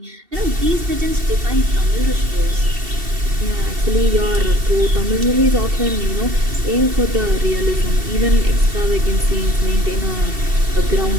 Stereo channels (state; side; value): late; left; 2.7 ms